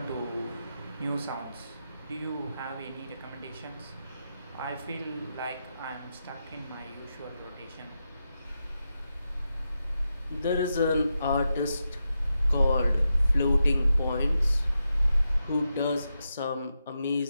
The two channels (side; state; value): both; inverted; correlation -0.87